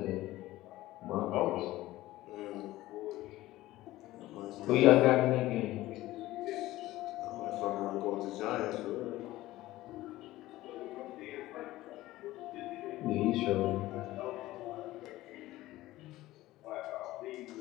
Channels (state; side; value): quieter; right; 16.7 dB